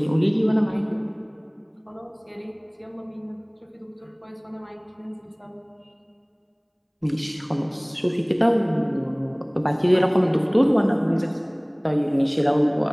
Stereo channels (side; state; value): both; identical; correlation 1.00